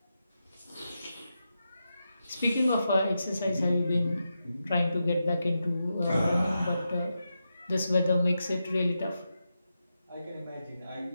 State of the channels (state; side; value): inverted; both; correlation -0.88